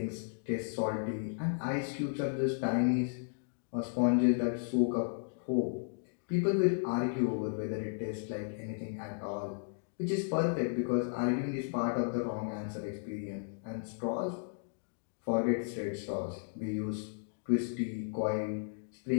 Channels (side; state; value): right; silent; digital silence